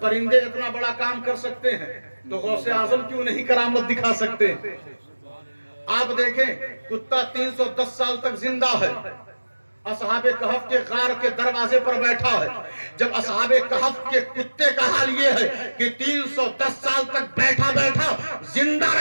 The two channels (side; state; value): both; inverted; correlation -1.00